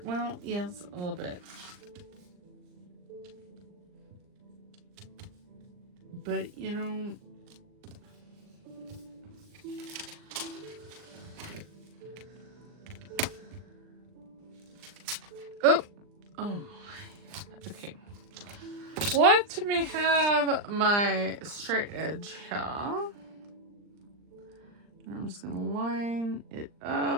Well, yes, a little bit. But, you know, oh, my. Okay. Let me have my straight edge here. And I'm just going to line it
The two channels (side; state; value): left; late; 39 ms